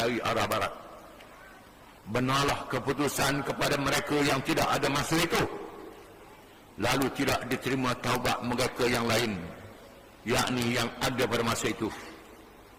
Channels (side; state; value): both; identical; correlation 1.00